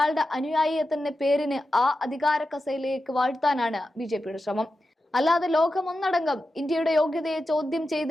അനുയായിയെ തന്നെ പേരിന് ആ അധികാര കസേരയിലേക്ക് വാഴ്ത്താനാണ് ബിജെപിയുടെ ശ്രമം. അല്ലാതെ ലോകമൊന്നടങ്കം ഇന്ത്യയുടെ യോഗ്യതയെ ചോദ്യം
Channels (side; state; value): both; normal; correlation 0.91